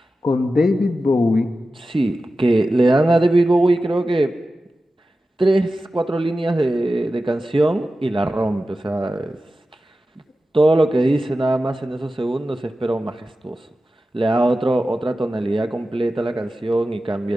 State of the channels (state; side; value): normal; both; correlation 0.93